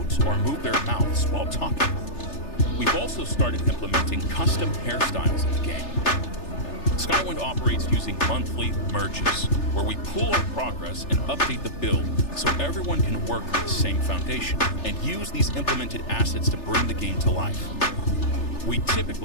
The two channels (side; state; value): right; late; 3.3 ms